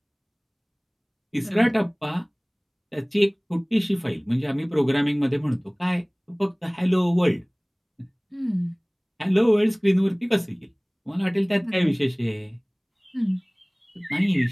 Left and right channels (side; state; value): both; identical; correlation 1.00